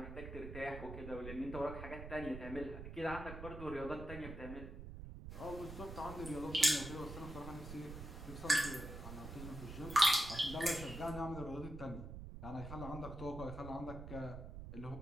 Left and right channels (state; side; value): noise; right; rumble, 9 dB below the sound